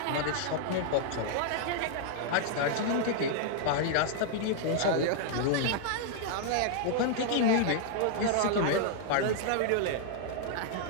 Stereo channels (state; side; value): different; both; correlation -0.01